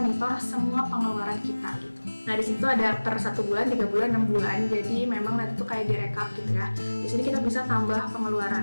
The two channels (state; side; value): inverted; both; correlation -1.00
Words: semua pengeluaran kita gitu. Nah, di situ ada per 1 bulan, 3 bulan, 6 bulan. Jadi memang nanti tuh kayak direkap gitu ya. Di sini kita bisa tambah